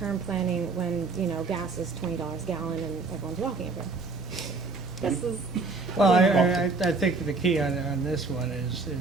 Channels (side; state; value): left; quieter; 4.0 dB